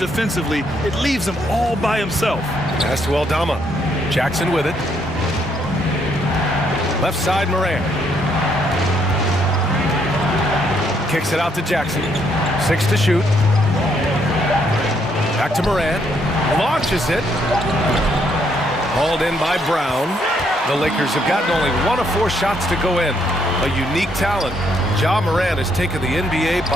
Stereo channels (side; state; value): both; normal; correlation 0.72